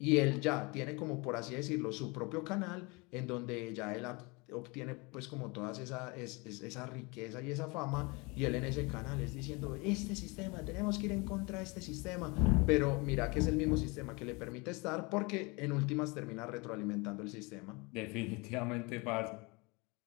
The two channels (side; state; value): right; quieter; 27.4 dB